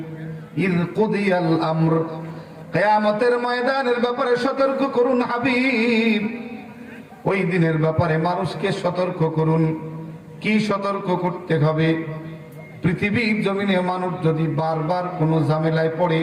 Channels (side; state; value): both; identical; correlation 1.00